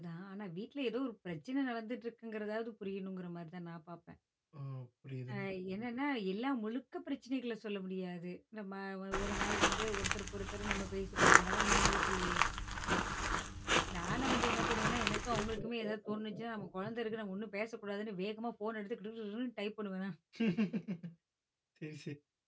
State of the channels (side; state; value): both; identical; correlation 1.00